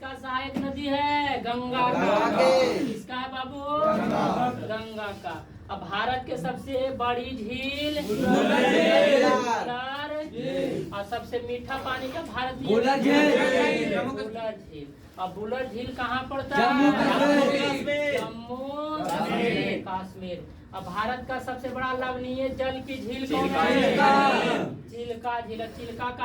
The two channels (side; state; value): both; identical; correlation 1.00